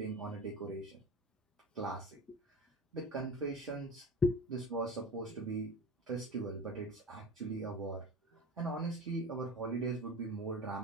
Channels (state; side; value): normal; both; correlation 0.32